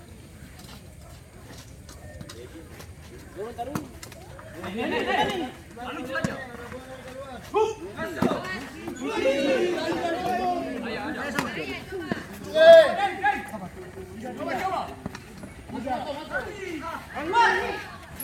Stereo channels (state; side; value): identical; both; correlation 1.00